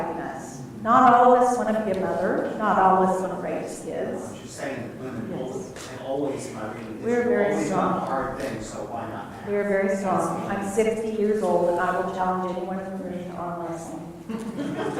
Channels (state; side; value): identical; both; correlation 1.00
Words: us. Not all of us want to be a mother. Not all of us want to raise kids. She's saying that women Yes. always in my reading history We're very always strong. do hard things, so why not? We are very strong. I'm 60 years old, and I will challenge anyone in the room to arm wrestling.